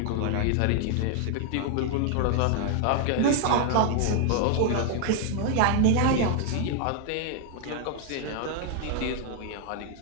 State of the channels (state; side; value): different; both; correlation 0.00